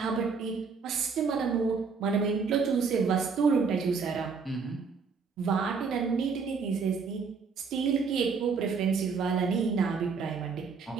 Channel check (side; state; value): left; quieter; 5.3 dB